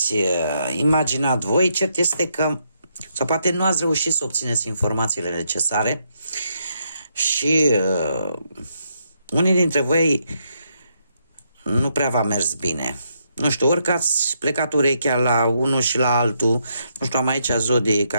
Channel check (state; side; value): inverted; both; correlation -0.77